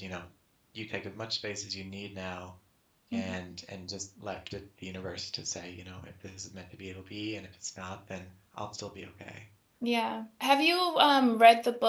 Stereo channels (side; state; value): both; identical; correlation 1.00